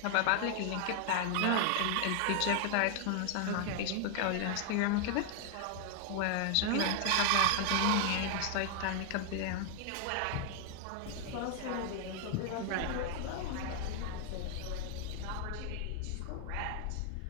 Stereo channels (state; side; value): different; both; correlation 0.00